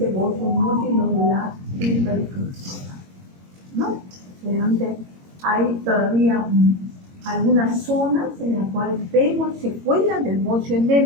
bocio multinodular hiperfuncional, ¿no? Realmente hay todavía algunas zonas en las cuales vemos secuelas del bocio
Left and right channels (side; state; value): left; late; 22 ms